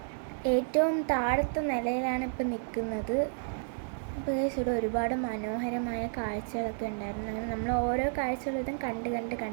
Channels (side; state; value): left; silent; digital silence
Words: ഏറ്റവും താഴത്തെ നിലയിലാണ് ഇപ്പം നിൽക്കുന്നത്. അപ്പോൾ ഗൈസ് ഇവിടെ ഒരുപാട് മനോഹരമായ കാഴ്ചകളൊക്കെ ഉണ്ടായിരുന്നു. അങ്ങനെ നമ്മൾ ഓരോ കാഴ്ചകളും ഇതും